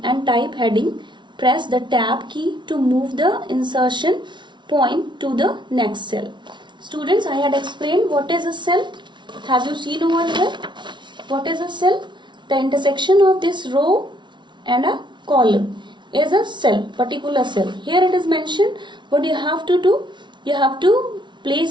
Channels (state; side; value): late; left; 0.23 ms